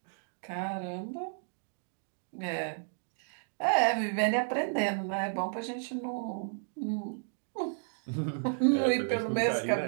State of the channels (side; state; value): left; silent; digital silence